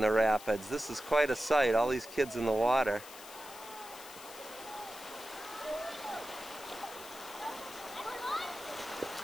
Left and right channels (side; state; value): left; noise; hiss, 15 dB below the sound